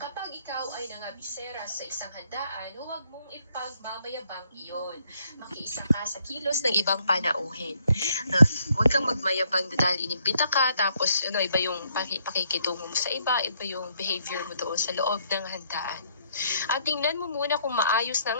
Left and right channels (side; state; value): both; inverted; correlation -0.70